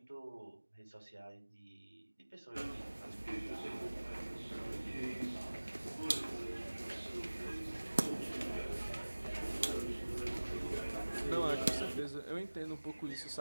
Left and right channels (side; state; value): both; inverted; correlation -1.00